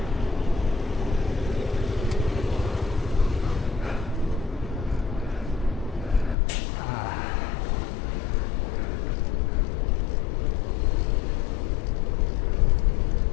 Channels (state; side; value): drops out; right; at 6.4 s